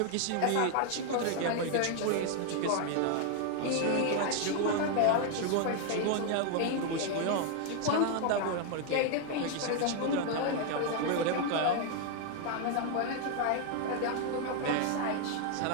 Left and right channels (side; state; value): both; different; correlation 0.00